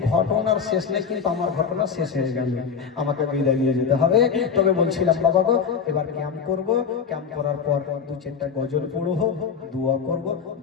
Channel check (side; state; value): right; quieter; 6.4 dB